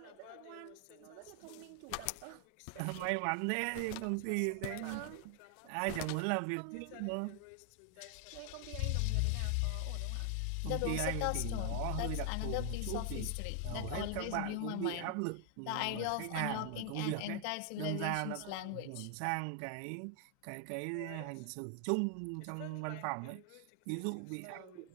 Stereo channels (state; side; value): different; both; correlation 0.00